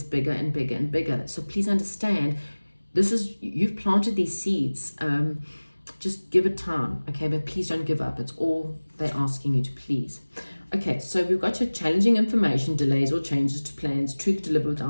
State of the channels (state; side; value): inverted; both; correlation -1.00